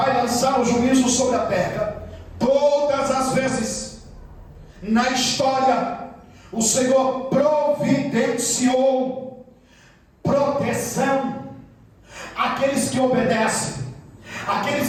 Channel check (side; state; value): both; identical; correlation 1.00